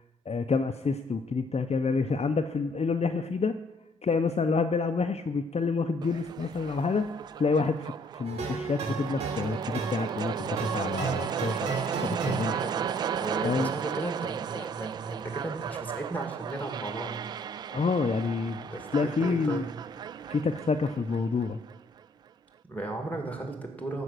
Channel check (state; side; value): normal; both; correlation 0.63